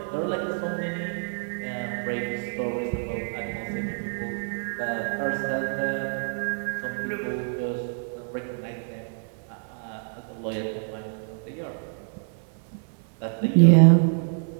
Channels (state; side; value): silent; left; 59 dB below the other